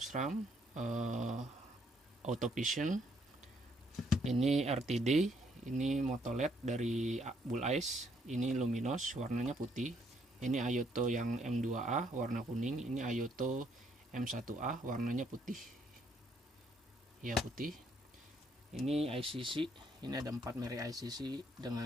Auto Vision, ini RTD, ini Moto LED dari Bull Ice, ini Luminos warnanya putih, ini Ayoto yang M2A warna kuning, ini Ayoto M1A warnanya putih ya, putih. Ini ICC, ini ada 4 merek ICC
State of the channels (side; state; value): both; normal; correlation 0.70